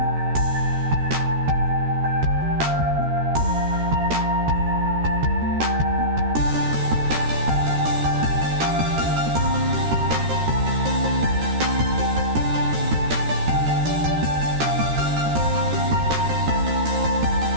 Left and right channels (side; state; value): left; late; 13 ms